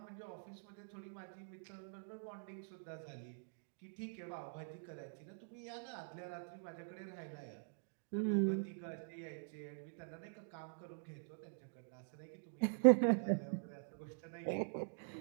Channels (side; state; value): left; silent; digital silence